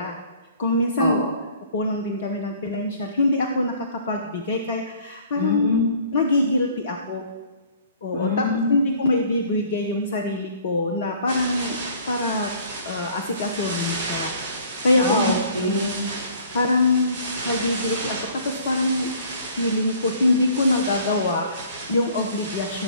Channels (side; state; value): both; inverted; correlation -0.54